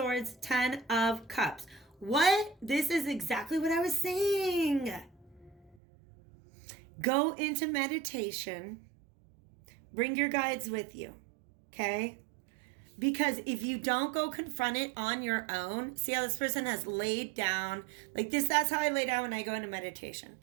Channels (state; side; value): drops out; left; at 5.8 s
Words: 10 of Cups. What? This is exactly what I was saying. Go into meditation. Bring your guides with you. Okay. Because if you don't go confront it on your own, see how this person has laid down, like this, that's how I lay down when I go into meditation,